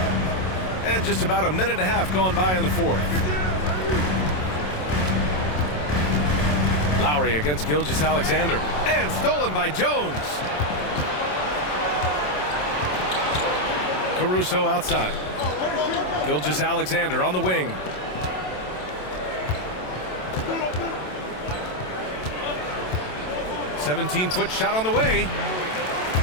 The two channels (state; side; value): late; right; 27 ms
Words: And just about a minute and a half gone by in the 4th. Lowry against Gilgeous-Alexander. And stolen by Jones. Caruso outside. Gilgeous-Alexander on the wing. 17-foot shot on the way.